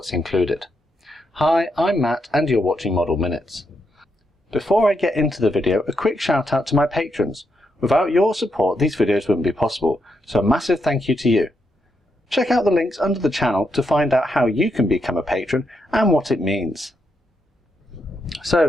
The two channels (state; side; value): normal; both; correlation 0.81